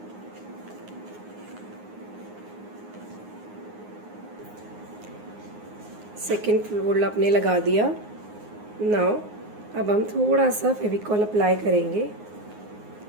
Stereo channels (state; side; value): late; left; 9.6 ms